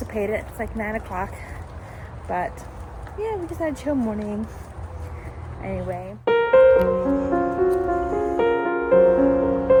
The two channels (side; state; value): both; identical; correlation 1.00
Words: It's like 9 o'clock. But yeah, we just had a chill morning. Anyway.